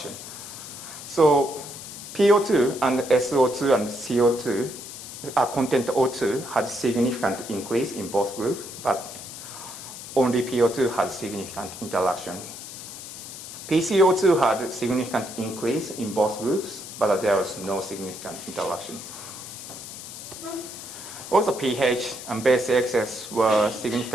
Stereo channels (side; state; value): left; noise; hiss, 12 dB below the sound